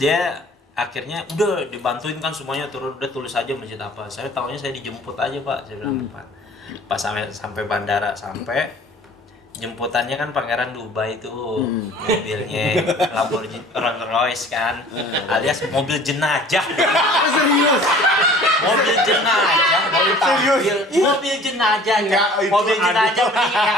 akhirnya udah dibantuin kan semuanya, turun udah tulis aja masjid apa. Saya tahunya saya dijemput aja Pak, saya bilang Pak. Pas sampai bandara jemputannya kan Pangeran Dubai tuh, mobilnya Lamborghini Rolls Royce kan, alias mobil jenajah. Serius? Mobil jenajah, mobil jenajah, mobil jenajah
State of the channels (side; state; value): both; normal; correlation 0.49